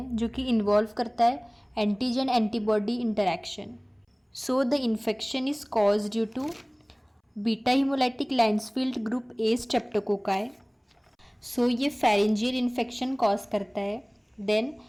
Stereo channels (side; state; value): both; identical; correlation 1.00